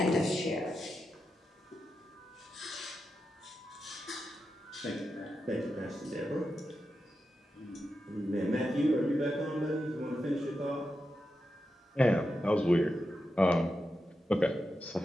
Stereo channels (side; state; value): both; normal; correlation 0.89